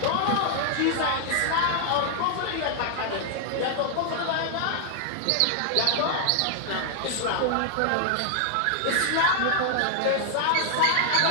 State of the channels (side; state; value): both; different; correlation 0.00